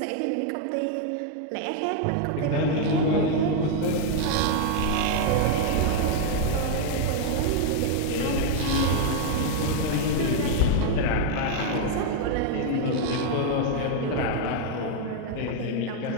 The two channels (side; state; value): both; different; correlation 0.00